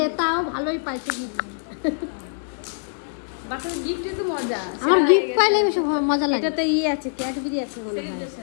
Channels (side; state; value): right; silent; 63 dB below the other